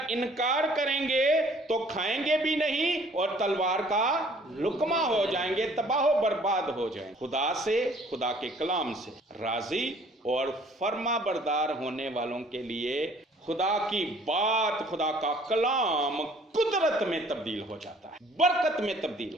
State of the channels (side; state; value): both; normal; correlation 0.57